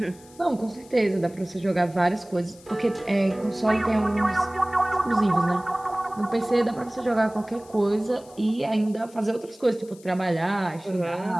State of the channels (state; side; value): noise; left; hiss, 24 dB below the sound